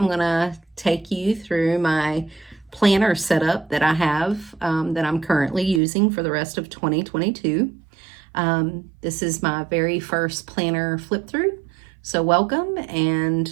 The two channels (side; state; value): left; drops out; at 5.8 s